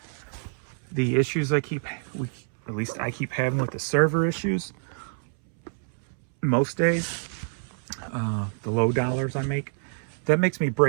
the issues at least I keep having with the server issues most days, the low dollars I make, that makes me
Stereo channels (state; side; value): silent; left; 60 dB below the other